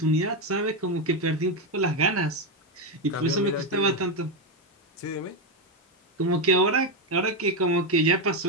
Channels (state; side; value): normal; both; correlation 0.07